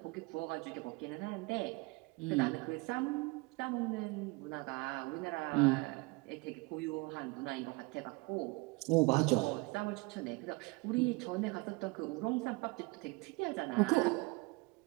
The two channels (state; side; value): quieter; left; 25.7 dB